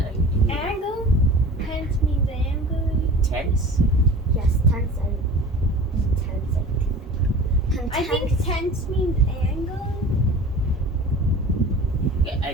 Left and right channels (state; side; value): normal; both; correlation 0.39